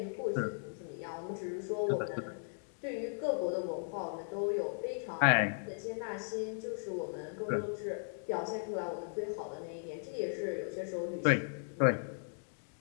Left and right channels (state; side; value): silent; right; digital silence